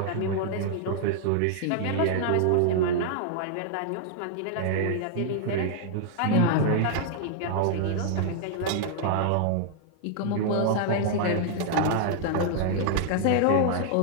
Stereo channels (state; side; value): different; both; correlation -0.01